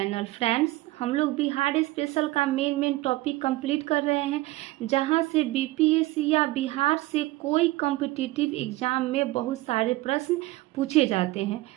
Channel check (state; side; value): quieter; left; 18.7 dB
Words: Friends, हम लोग Bihar special का main topic complete कर रहे हैं, जहां से बीपीएससी या बिहार से कोई कॉम्पिटिटिव एग्जाम में बहुत सारे प्रश्न पूछे जाते हैं।